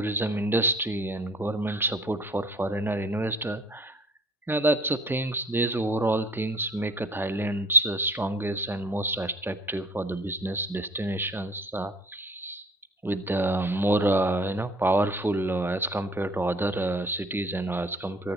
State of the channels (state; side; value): normal; both; correlation 0.51